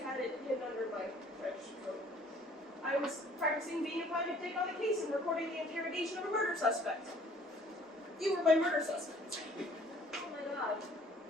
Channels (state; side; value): normal; both; correlation 0.56